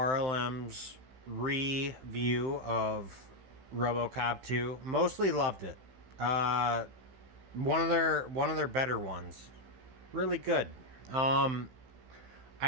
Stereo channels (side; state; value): left; late; 15 ms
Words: review of Robocop 2. Mostly loved it. Uh, one of their better ones. Really good. Um,